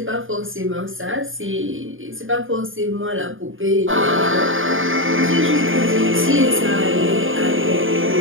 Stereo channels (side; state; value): left; late; 0.58 ms